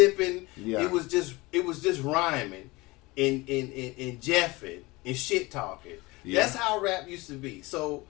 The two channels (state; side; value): quieter; right; 22.6 dB